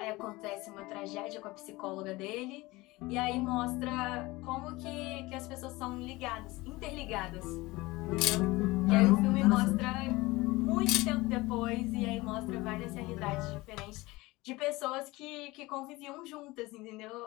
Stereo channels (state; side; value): quieter; right; 21.0 dB